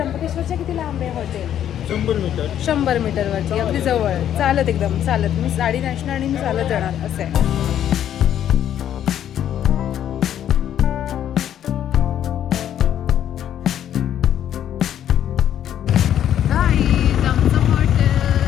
किती लांब आहे हॉटेल? 100 मीटरवरती, अगदी जवळ. चालत, एकदम चालत. मी साडी नेसणार आणि मी चालत जाणार असं आहे.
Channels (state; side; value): quieter; right; 10.4 dB